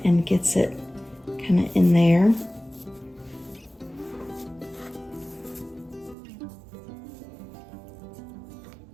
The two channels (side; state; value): left; drops out; at 6.2 s